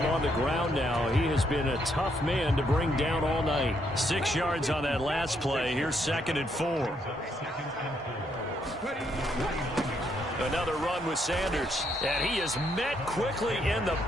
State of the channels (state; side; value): normal; both; correlation 0.74